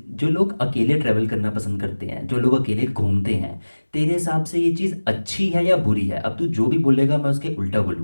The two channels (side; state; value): both; inverted; correlation -1.00